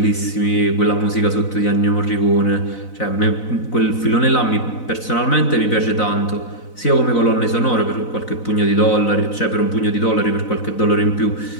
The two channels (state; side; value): late; right; 4.0 ms